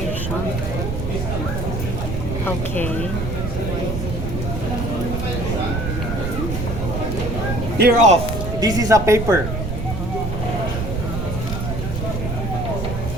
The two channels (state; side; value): noise; right; rumble, 3 dB below the sound